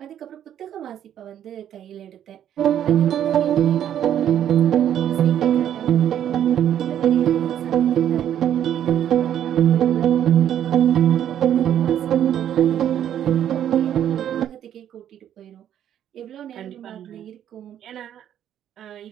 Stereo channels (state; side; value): quieter; left; 10.4 dB